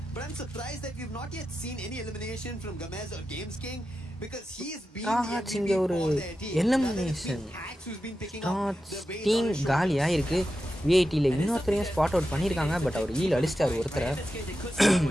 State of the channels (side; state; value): both; normal; correlation 0.90